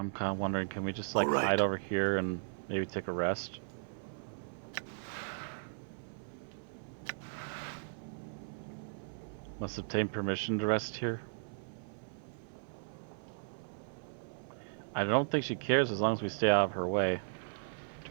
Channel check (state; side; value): silent; left; 53 dB below the other